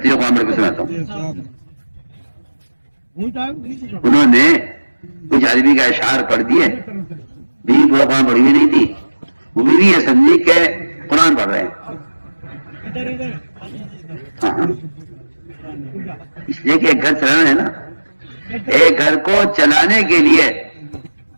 قرآن پڑھ کے سناتا ہوں. انہوں نے کچھ عربی کا اشعار پڑھ دیے، بیوی پورا قرآن پڑھی ہوئی نہیں تھی، وہ بیوی یہ سمجھی کہ قرآن پڑھ رہے ہیں. ہاں اس لیے کہ ایک گھر چلانا ہے نا، ایک گھر کو چلانے کے لیے،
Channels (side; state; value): both; inverted; correlation -1.00